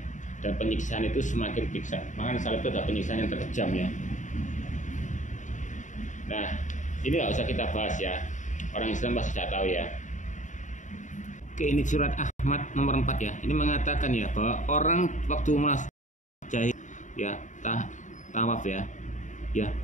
Dan penyiksaan itu semakin piksa. Makanya salib itu adalah penyiksaan yang terkejam ya. Nah, ini nggak usah kita bahas ya. Orang Islam pasti sudah tahu ya. Oke, ini surat Ahmad nomor 4 ya. Ini mengatakan ya bahwa orang waktu jahil ya tawaf ya,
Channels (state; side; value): late; right; 0.36 ms